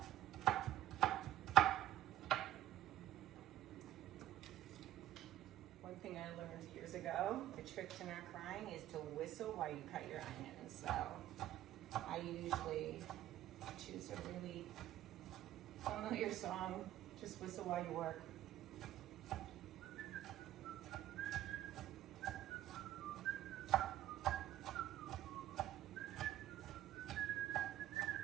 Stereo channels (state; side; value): quieter; left; 13.4 dB